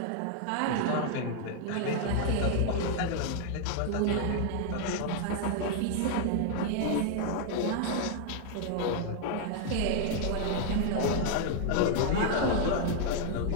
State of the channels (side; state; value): both; different; correlation 0.00